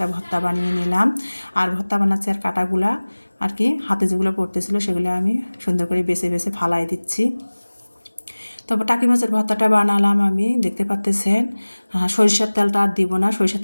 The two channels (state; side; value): inverted; both; correlation -1.00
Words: ভর্তা বানিয়ে নিলাম। আর ভর্তা বানাচ্ছি, আর কাঁটাগুলা আর কি হাতে যেগুলো পড়তেছিল সেগুলো আমি সুন্দর করে বেছে বেছে ফালাই দিচ্ছি। তারপর টাকি মাছের ভর্তাটা বানালাম আমি, দেখতে পাচ্ছেন। সরিষার তেলটা আর দিব না, সরিষার